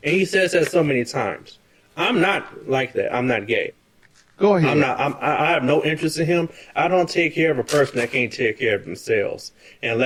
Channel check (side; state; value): both; identical; correlation 1.00